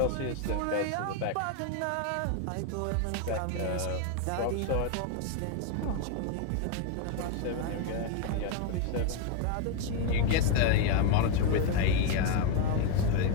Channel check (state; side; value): different; both; correlation 0.01